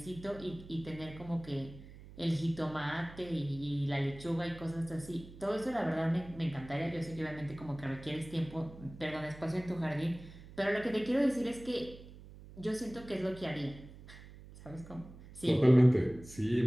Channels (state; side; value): noise; right; hum, 17 dB below the sound